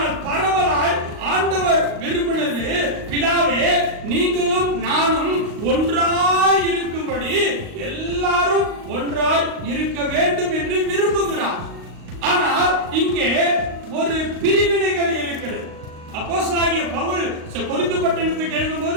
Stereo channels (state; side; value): late; left; 38 ms